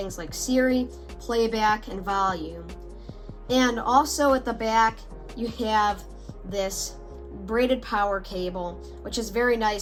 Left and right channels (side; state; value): both; identical; correlation 1.00